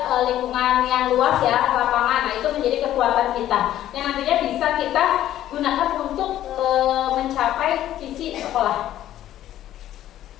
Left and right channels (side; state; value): right; quieter; 12.6 dB